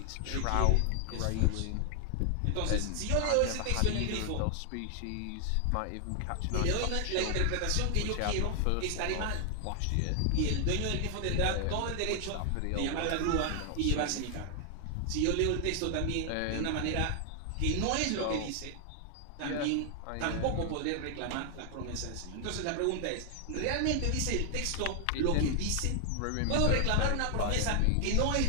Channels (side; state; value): both; different; correlation 0.00